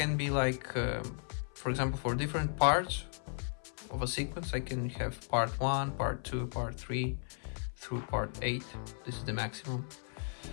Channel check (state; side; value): silent; right; 54 dB below the other